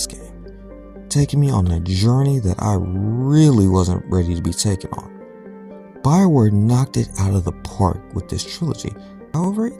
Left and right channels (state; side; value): identical; both; correlation 1.00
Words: game, taking me on a journey that I really wasn't ready to be taken on. Bioware knocked it out of the park with this trilogy. However,